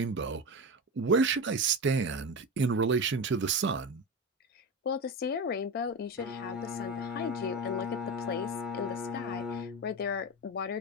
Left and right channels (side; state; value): both; normal; correlation 0.21